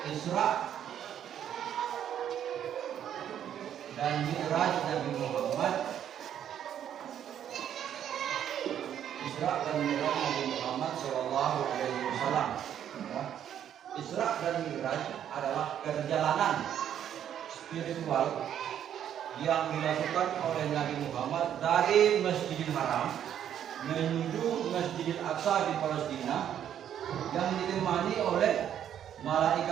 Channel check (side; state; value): left; quieter; 9.9 dB